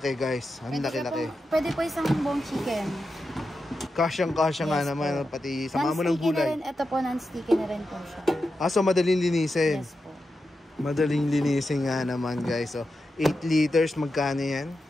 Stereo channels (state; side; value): normal; both; correlation 0.89